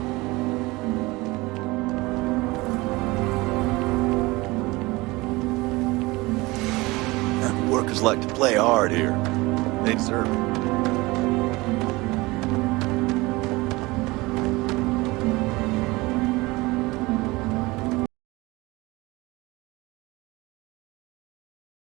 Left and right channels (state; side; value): quieter; left; 22.1 dB